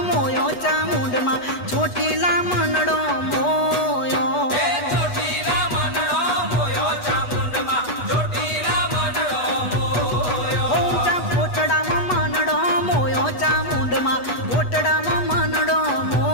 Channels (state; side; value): late; right; 8.2 ms